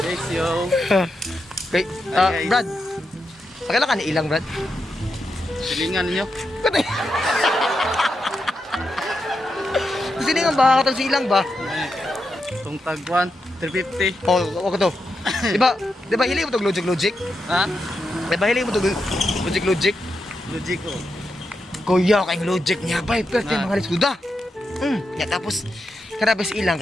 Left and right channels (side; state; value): both; normal; correlation 0.86